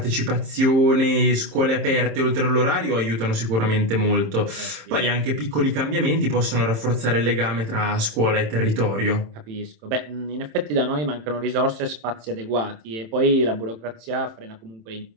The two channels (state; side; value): late; left; 27 ms